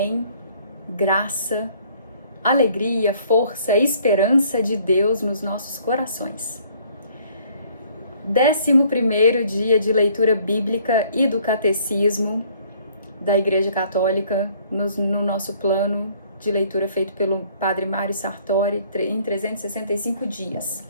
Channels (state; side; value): inverted; both; correlation -0.60